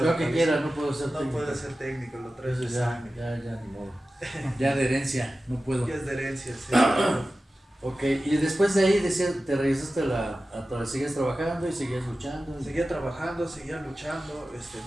que vez. quiera, no puedo ser No técnico. puede ser técnico, lo traes Eso de ya, sangre. ya, ni modo. Ya de herencia, no puedo. Ya es de herencia, sí. Ok, y después de ahí decías, te regresaste seguías trabajando y seguías luchando. Seguía trabajando, seguía luchando,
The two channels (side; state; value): both; normal; correlation 0.95